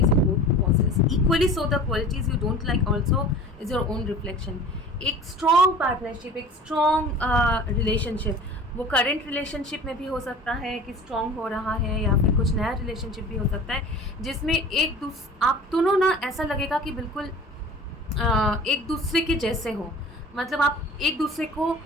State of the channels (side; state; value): both; normal; correlation 0.41